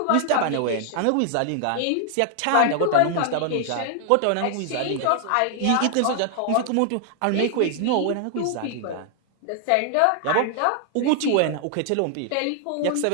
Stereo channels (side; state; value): both; different; correlation 0.00